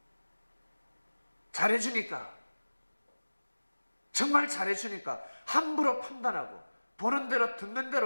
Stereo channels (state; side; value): inverted; both; correlation -1.00